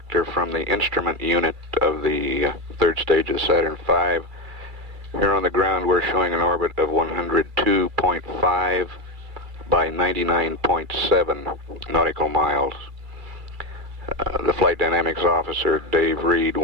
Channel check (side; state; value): left; late; 2.3 ms